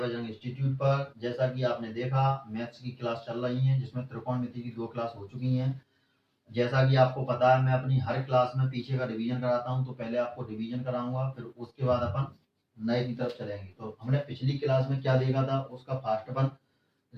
इंस्टीट्यूट पर। जैसा कि आपने देखा, मैथ्स की क्लास चल रही है जिसमें त्रिकोणमिति की 2 क्लास हो चुकी हैं। जैसा कि आपको पता है, मैं अपनी हर क्लास में पीछे का रिवीजन कराता हूं, तो पहले आपको रिवीजन कराऊंगा, फिर उसके बाद अपन नए की तरफ चलेंगे। तो हमने पिछली क्लास में क्या देखा था उसका फास्ट अपन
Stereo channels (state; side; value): identical; both; correlation 1.00